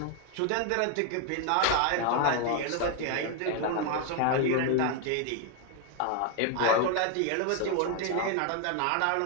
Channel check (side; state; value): both; different; correlation 0.00